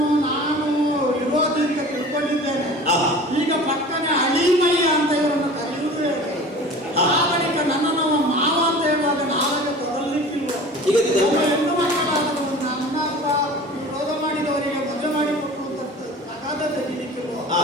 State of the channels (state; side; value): normal; both; correlation 0.40